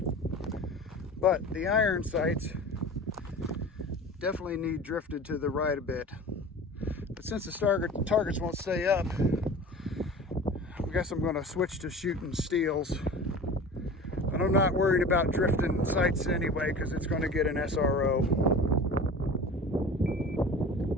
but the iron sights definitely need drifted to the right a bit. But since the targets won't stay up, I guess I'm going to switch to shooting steels. But I'm not worried about drifting sights anyway because it's going to get an SRO.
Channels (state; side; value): normal; both; correlation 0.37